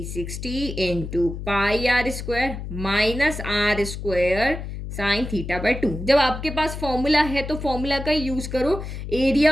into pi r square minus r square sine theta by 2. जब आपके पास फॉर्मूला है तो फॉर्मूला का यूज करो.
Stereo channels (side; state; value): left; noise; hum, 8 dB below the sound